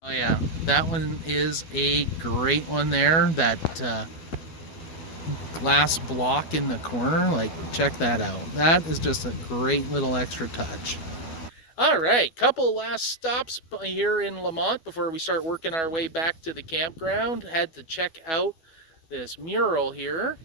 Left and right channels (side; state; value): right; late; 12 ms